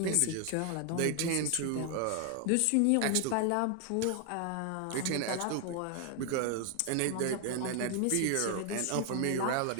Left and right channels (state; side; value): different; both; correlation 0.00